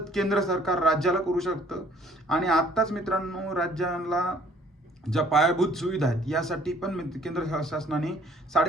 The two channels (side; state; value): both; normal; correlation 0.58